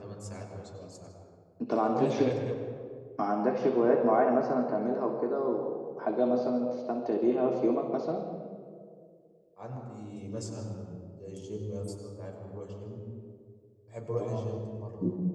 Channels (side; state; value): both; identical; correlation 1.00